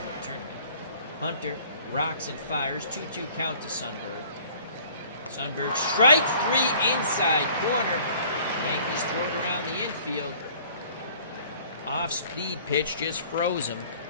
the tournament. Hunter rocks and fires, 2-2 count to Sundberg. Sundberg strikes 3 inside corner. Yankees throw it around the infield. Off-speed pitch just froze him.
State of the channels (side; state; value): both; inverted; correlation -0.52